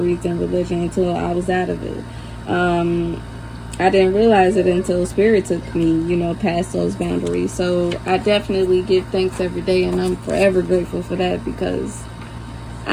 in religion until I was out of it. I didn't realize it until Spirit took me, past those boundaries. So I definitely give thanks every day, and I'm forever grateful for that, because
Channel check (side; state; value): both; identical; correlation 1.00